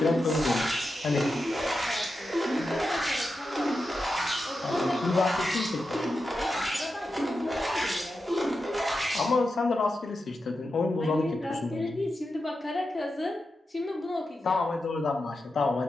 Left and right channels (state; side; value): normal; both; correlation 0.89